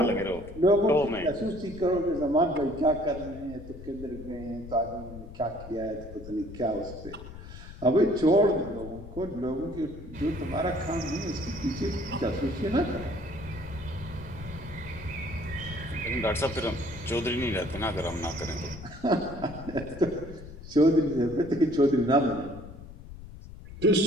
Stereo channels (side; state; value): left; noise; rumble, 14 dB below the sound